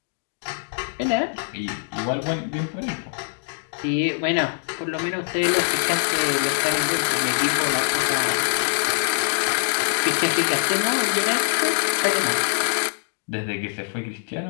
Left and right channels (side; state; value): right; silent; digital silence